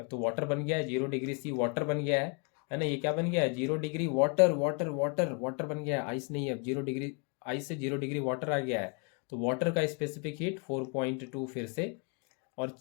तो वाटर बन गया है, 0 डिग्री सी वाटर बन गया है ना, ये क्या बन गया है, 0 degree water water water water बन गया है, आइस नहीं है अब, 0 डिग्री आइस से 0 डिग्री वाटर आ गया है। तो वाटर का स्पेसिफिक हीट 4.2 फिर से, और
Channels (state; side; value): quieter; right; 36.0 dB